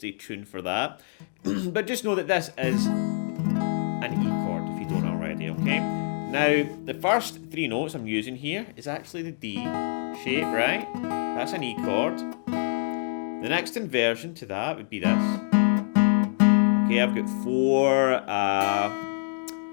tuned for that. But just know that this is an E chord, if you don't already, okay? Now, the first three notes I'm using here is actually the D shape, right? That's an E chord. The next inversion to that would be this. Okay, I've got 4,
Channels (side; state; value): right; silent; digital silence